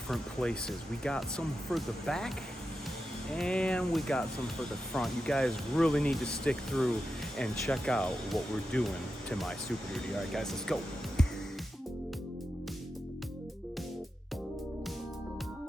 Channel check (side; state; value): both; normal; correlation 0.89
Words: places. We got some for the back and we got some for the front. You guys really need to stick through and check out what we're doing to my Superduty. All right, guys, let's go.